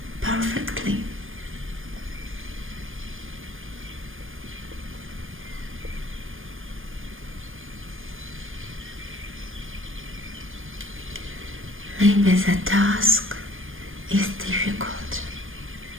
perfectly. Maybe the task is difficult.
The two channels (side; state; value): left; late; 0.59 ms